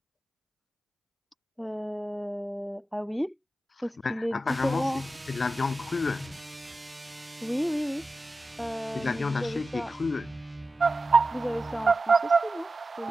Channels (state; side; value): normal; both; correlation 0.93